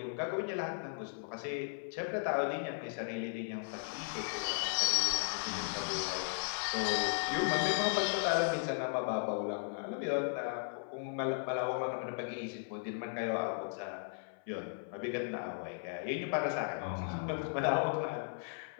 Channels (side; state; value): right; silent; 54 dB below the other